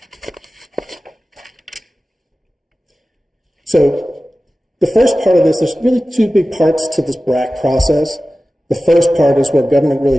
So the first part of this, there's really two big parts to this BRAC process. The first part is where government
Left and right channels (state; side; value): normal; both; correlation 0.96